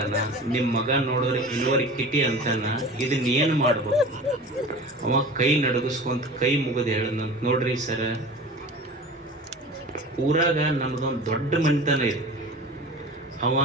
ನಿಮ್ಮ ಮಗ ನೋಡಿದ್ರೆ ಇನ್ವರ್ಕಿಟಿ ಅಂತಾನ. ಇದನ್ನ ಏನು ಮಾಡ್ಬೇಕು? ಅವ ಕೈ ನಡಗಿಸ್ಕೊಂತ ಕೈ ಮುಗಿದು ಹೇಳದಂತ, ನೋಡ್ರಿ ಸರ, ಊರಾಗ ನಮ್ದೊಂದು ದೊಡ್ಡ ಮನಿತನ ಇದೆ. ಅವ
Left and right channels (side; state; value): both; normal; correlation 0.37